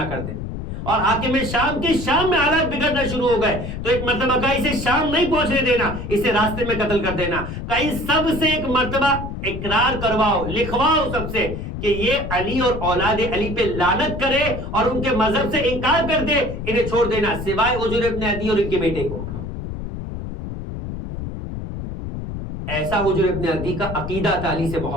کر دے، اور حاکم شام کے شام میں حالات بگڑنا شروع ہو گئے تو ایک مرتبہ کہا اسے شام نہیں پہنچنے دینا، اسے راستے میں قتل کر دینا۔ کہیں سب سے ایک مرتبہ اقرار کرواؤ، لکھواؤ سب سے کہ یہ علی اور اولاد علی پہ لعنت کرے اور ان کے مذہب سے انکار کر دے، انہیں چھوڑ دینا سوائے حجر ابن عدی اور ان کے بیٹے کو۔ ایسا حجر ابن عدی کا عقیدہ تھا علی سے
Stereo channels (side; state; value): left; noise; rumble, 7 dB below the sound